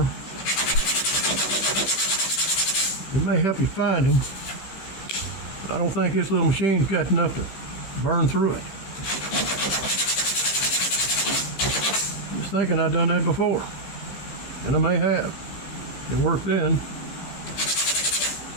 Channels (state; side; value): late; right; 15 ms